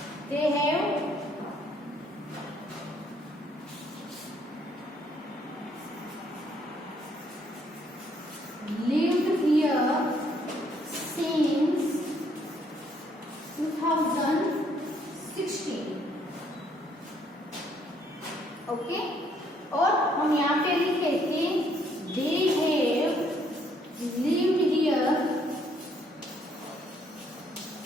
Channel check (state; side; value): normal; both; correlation 0.68